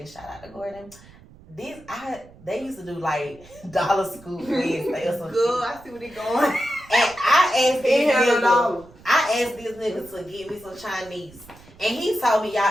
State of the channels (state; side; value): noise; right; rumble, 23 dB below the sound